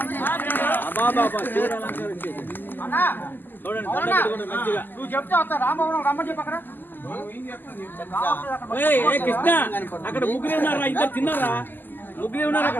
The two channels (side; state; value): right; late; 0.090 ms